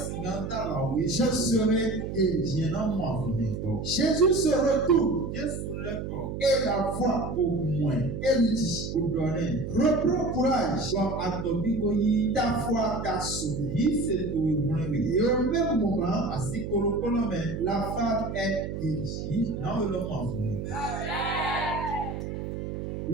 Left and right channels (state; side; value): noise; right; hum, 6 dB below the sound